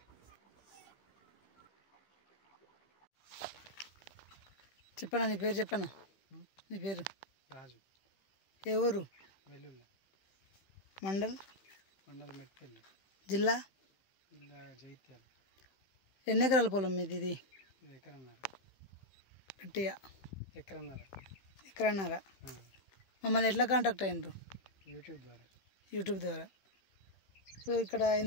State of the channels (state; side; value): late; right; 15 ms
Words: చెప్పనా నీ పేరు చెప్పనా? నీ పేరు రాజు. ఏ ఊరు? వెల్లుల్లి. మండల్ మెట్పల్లి. జిల్లా జైత్యాల. ఎన్ని ఎకరాల పొలం మీది? ఇది ఎకరన్నర. గట్టిగా ఎకరన్నర. మమ్మల్ని ఎట్లా కాంటాక్ట్ అయినరు? యూట్యూబ్ ద్వారా. సో ఇక్కడ